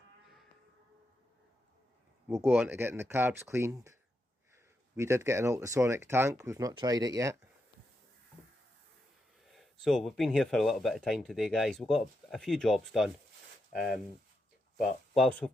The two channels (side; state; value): both; normal; correlation 0.84